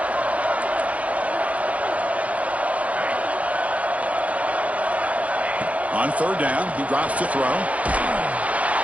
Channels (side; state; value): left; late; 0.067 ms